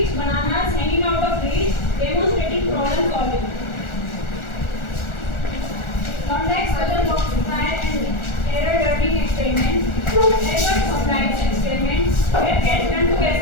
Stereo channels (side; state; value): right; late; 1.4 ms